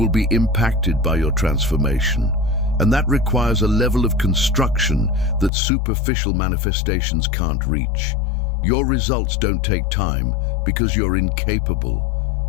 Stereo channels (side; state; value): right; drops out; at 5.5 s